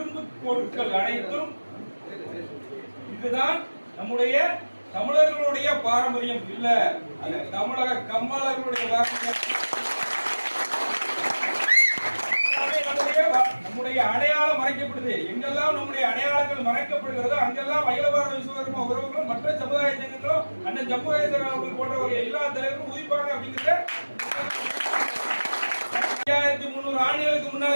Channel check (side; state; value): both; inverted; correlation -1.00